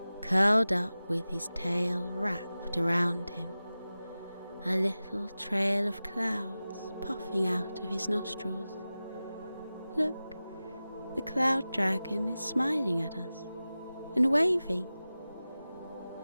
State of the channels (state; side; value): inverted; both; correlation -0.95